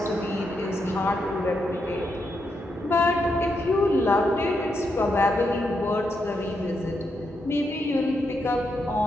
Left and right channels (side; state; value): both; normal; correlation 0.82